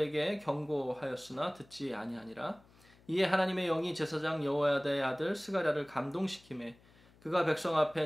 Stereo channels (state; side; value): noise; left; hum, 28 dB below the sound